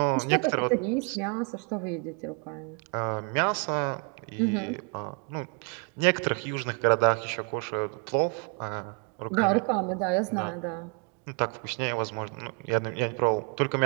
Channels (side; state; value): left; quieter; 36.4 dB